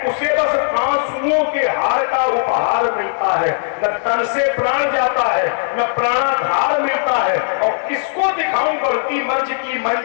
उसे बस आंसुओं के हार का उपहार मिलता है। न तन से प्राण जाता है, न प्राणाधार मिलता है। और किसको दिखाऊं बढ़ती मंच की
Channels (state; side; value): silent; right; 68 dB below the other